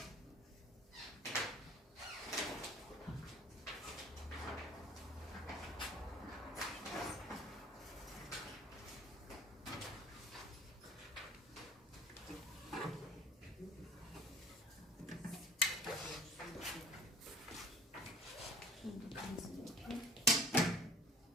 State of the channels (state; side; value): normal; both; correlation 0.49